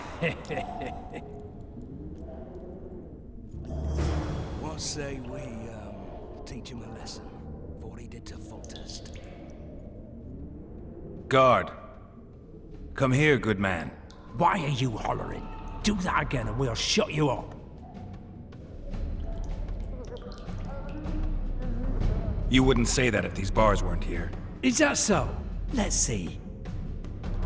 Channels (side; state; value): both; identical; correlation 1.00